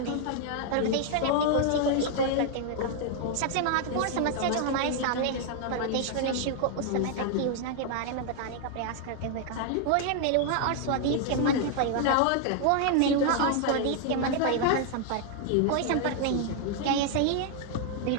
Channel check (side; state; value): both; different; correlation 0.00